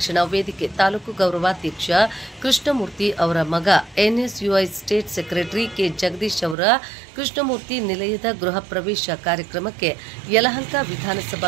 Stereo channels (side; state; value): left; drops out; at 6.6 s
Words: ವೇದಿಕೆ ತಾಲೂಕು ಗೌರವಾಧ್ಯಕ್ಷ ಕೃಷ್ಣಮೂರ್ತಿ ಅವರ ಮಗ NSUI state secretary K Jagadish ಅವರ ಕೃಷ್ಣಮೂರ್ತಿ ನಿಲಯದ ಗೃಹ ಪ್ರವೇಶ ಕಾರ್ಯಕ್ರಮಕ್ಕೆ ಯಲಹಂಕ